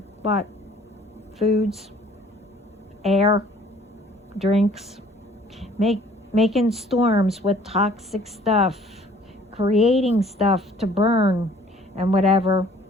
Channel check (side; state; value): both; normal; correlation 0.55